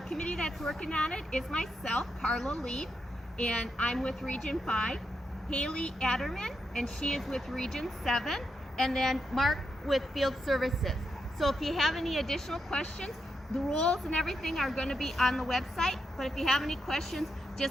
committee that's working on it is myself, Carla Lee, and I'm with Region 5, Haley Adderman, and she is with Region 7, and then Mark with Field Services. So if you have any additional questions, the rules and everything are going to be on the website, but if you have any questions,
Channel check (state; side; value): normal; both; correlation 0.83